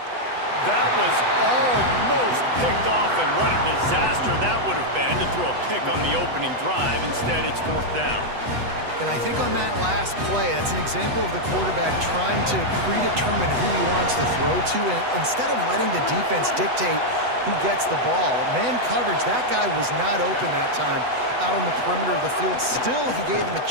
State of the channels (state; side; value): late; left; 8.0 ms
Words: That was almost picked off, and what a disaster that would have been to throw a pick on the opening drive. Instead, it's 4th down. And I think on that last play, that's an example of the quarterback trying to predetermine who he wants to throw to, and instead of letting the defense dictate who gets the ball. Man coverage, that guy was not open that time out on the perimeter of the field. Still, he gave him a